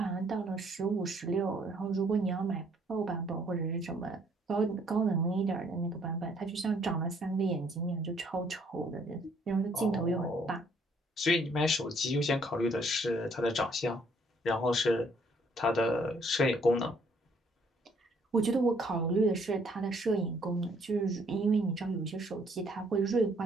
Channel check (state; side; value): normal; both; correlation 0.64